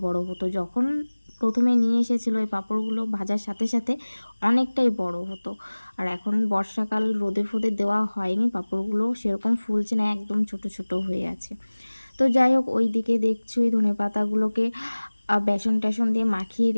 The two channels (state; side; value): inverted; both; correlation -1.00